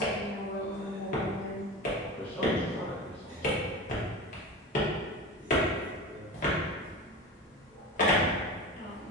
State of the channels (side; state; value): both; normal; correlation 0.29